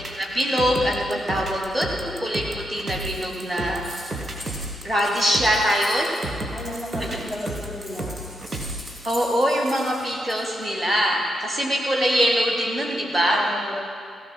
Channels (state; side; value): normal; both; correlation 0.82